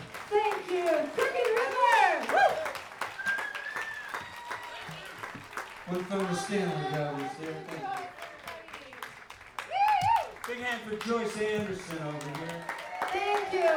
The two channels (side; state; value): both; identical; correlation 1.00